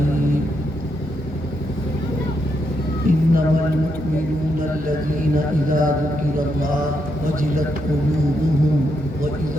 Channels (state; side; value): normal; both; correlation 0.80